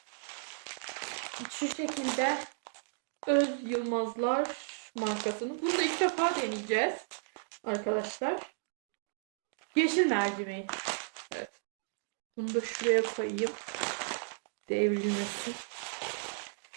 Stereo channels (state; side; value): silent; left; digital silence